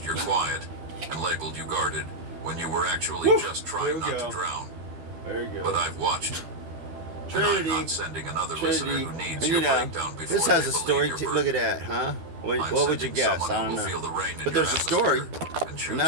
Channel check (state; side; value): late; left; 13 ms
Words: your quiet, and labeled you guarded when you were actually Woo. just There trying we not go. to drown. There you But I've watched. And Trinity. I'm not sending another listener Trinity. who needs You your know, breakdown before this has they a believe story. your Look burden. at that, huh? What I'm would you sending guess? someone I who don't will know. feel the rain in But your there's a story. atmosphere and choose